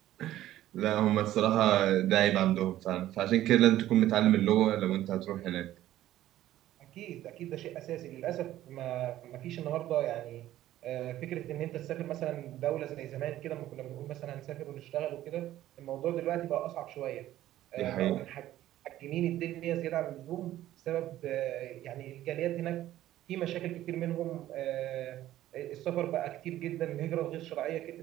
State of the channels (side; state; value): left; quieter; 13.8 dB